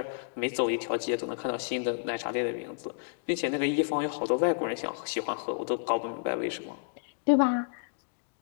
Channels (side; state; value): right; silent; digital silence